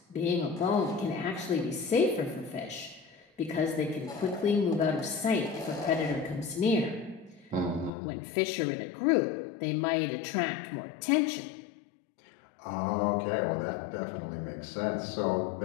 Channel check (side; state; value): right; drops out; at 7.9 s